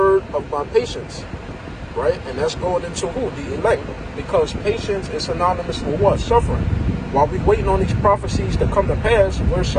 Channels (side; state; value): both; identical; correlation 1.00